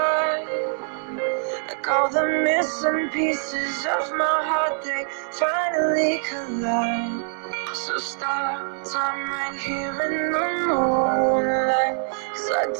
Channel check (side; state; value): left; silent; 63 dB below the other